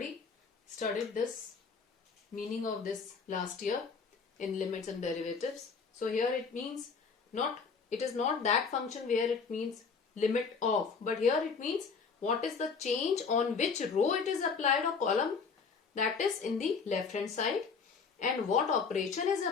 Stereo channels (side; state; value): right; quieter; 5.3 dB